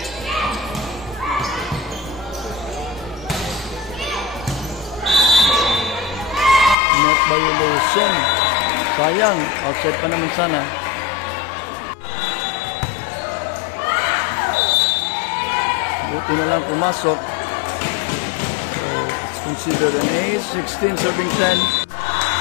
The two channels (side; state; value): right; drops out; at 6.8 s